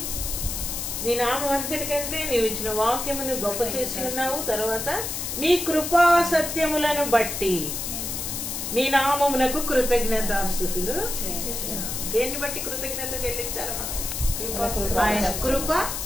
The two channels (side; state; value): left; noise; hiss, 4 dB below the sound